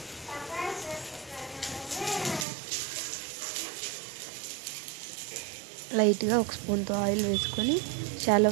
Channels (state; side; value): drops out; left; at 2.5 s